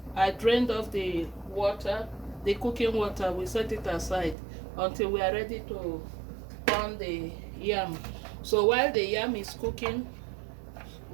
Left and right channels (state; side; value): drops out; left; at 4.4 s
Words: I drained off the water, the cooking water. We set it aside until we are ready to pound the yam. So while the yam is cooking,